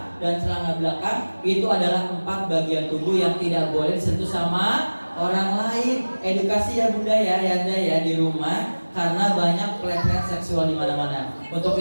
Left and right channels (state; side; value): inverted; both; correlation -1.00